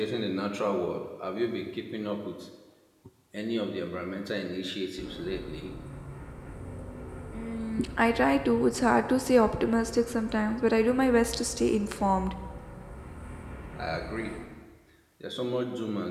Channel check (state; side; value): identical; both; correlation 1.00